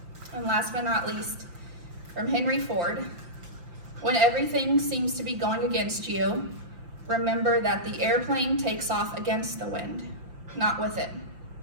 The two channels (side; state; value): left; late; 5.8 ms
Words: And last but not least, from Henry Ford, when everything seems to be going against you, remember that the airplane takes off against the wind, not with it.